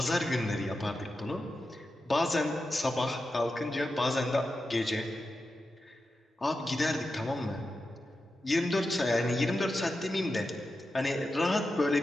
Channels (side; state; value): both; normal; correlation 0.90